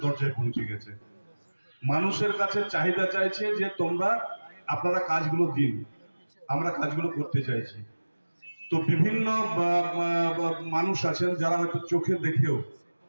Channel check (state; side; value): inverted; both; correlation -1.00